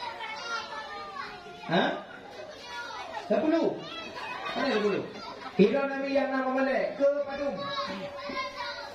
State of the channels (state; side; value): identical; both; correlation 1.00